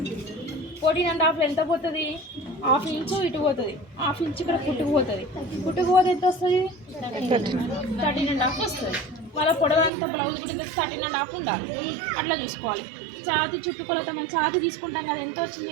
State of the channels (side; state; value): left; drops out; at 9.9 s